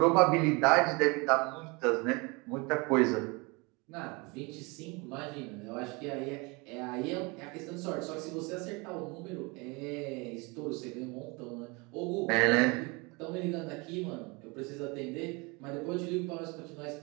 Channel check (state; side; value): quieter; left; 27.7 dB